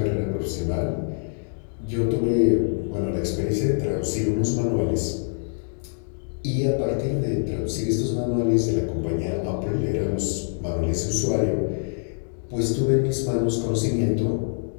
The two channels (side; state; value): right; silent; digital silence